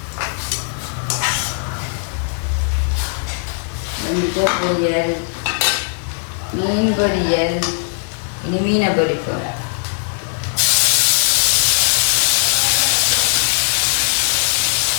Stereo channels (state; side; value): silent; right; 61 dB below the other